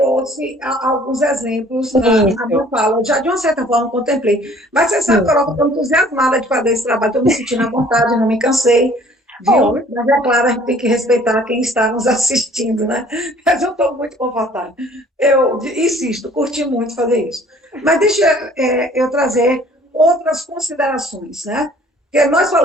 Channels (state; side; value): normal; both; correlation 0.54